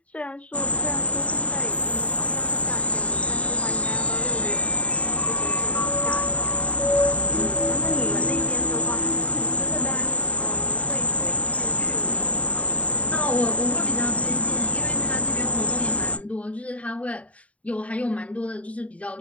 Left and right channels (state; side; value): late; right; 0.066 ms